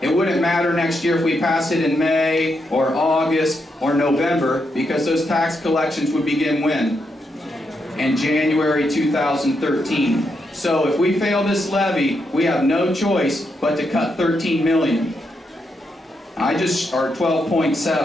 wouldn't matter next year if we pass it in May or August or November, because those tax collections would begin when? In January 2013. So if we fail this levy, we have no choice but to cut $13 million. Or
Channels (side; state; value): both; normal; correlation 0.82